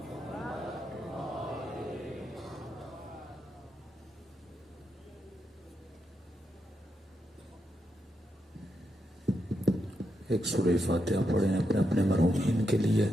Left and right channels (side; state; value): both; normal; correlation 0.83